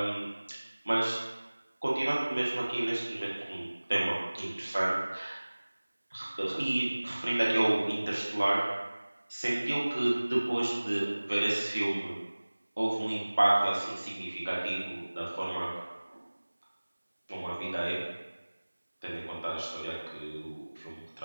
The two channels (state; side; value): inverted; both; correlation -1.00